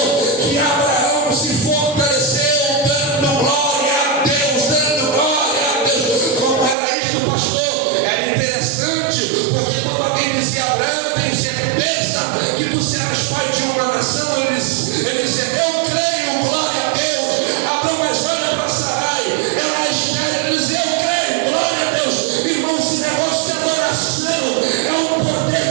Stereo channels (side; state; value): left; drops out; at 6.8 s